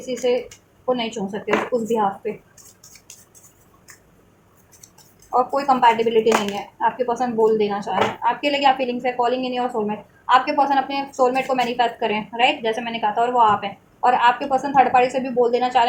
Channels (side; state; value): both; identical; correlation 1.00